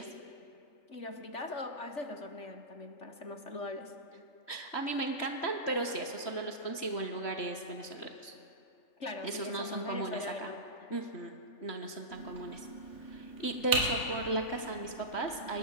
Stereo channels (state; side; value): late; right; 3.4 ms